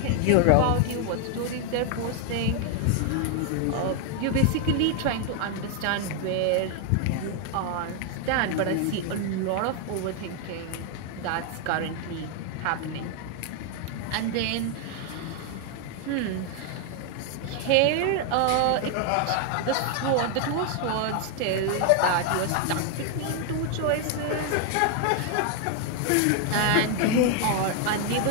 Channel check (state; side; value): different; both; correlation 0.00